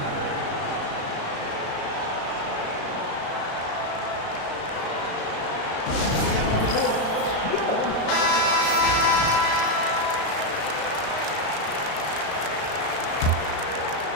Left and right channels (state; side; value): late; right; 35 ms